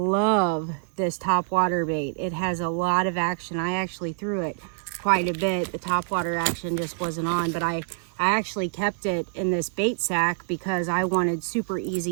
this topwater bait. It has a lot of action. I actually threw it quite a bit. The topwater action just wasn't on, but I actually kept it in this bait sack because I wanted super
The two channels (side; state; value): left; silent; digital silence